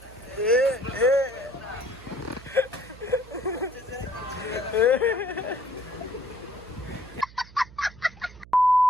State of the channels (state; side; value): noise; right; hum, 20 dB below the sound